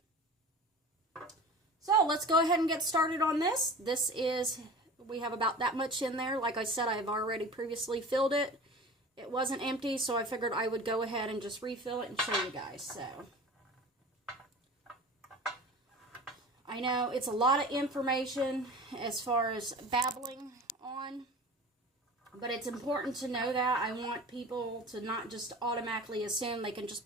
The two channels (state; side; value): normal; both; correlation 0.38